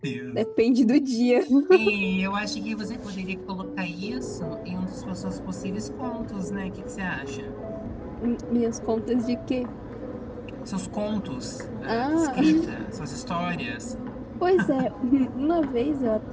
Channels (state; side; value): identical; both; correlation 1.00